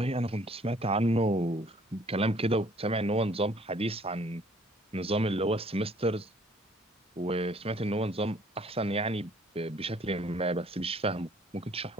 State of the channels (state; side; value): normal; both; correlation 0.59